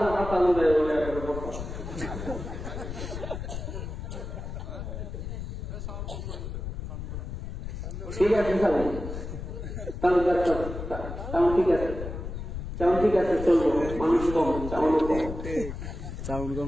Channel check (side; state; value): left; noise; rumble, 7 dB below the sound